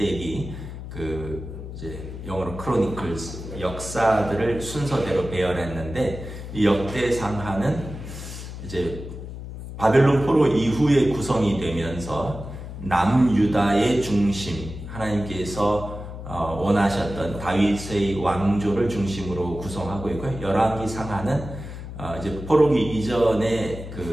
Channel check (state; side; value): noise; left; hum, 10 dB below the sound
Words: 이제 영어로 크로니클스 역사들을 순서대로 배열했는데 이 역대 상하는 이제 바벨론 포로 이후에 구성이 되면서 남유다의 중심 하나님께서 원하셨던 다윗의 왕조를 중심으로 구성하고 있고요. 열왕기 상하는 이제 포로기 이전의